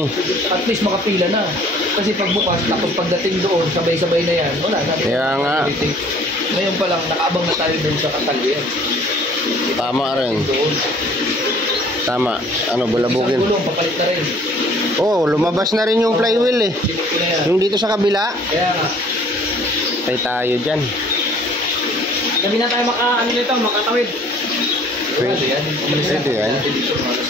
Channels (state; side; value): normal; both; correlation 0.54